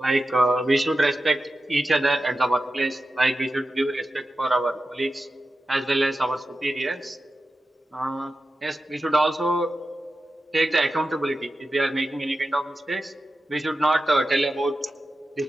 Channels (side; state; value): both; normal; correlation 0.92